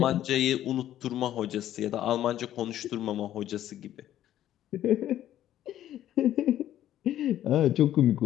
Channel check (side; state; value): right; quieter; 12.2 dB